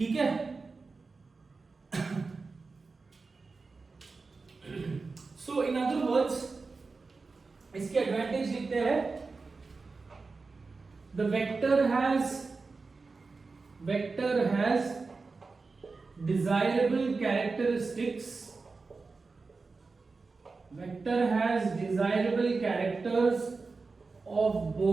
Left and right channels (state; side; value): quieter; left; 4.1 dB